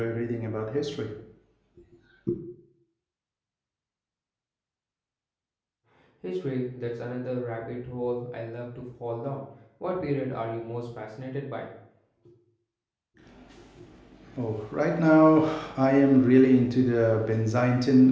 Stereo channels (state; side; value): identical; both; correlation 1.00